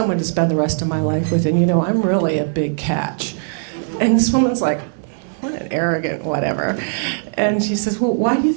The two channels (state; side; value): silent; left; 66 dB below the other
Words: to spend the rest of my life with, and you know, I'm really a big catch. And this woman's like, what an arrogant whatever. And she says, well, why do you